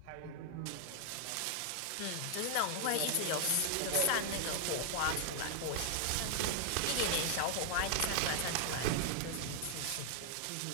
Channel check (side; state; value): both; different; correlation 0.00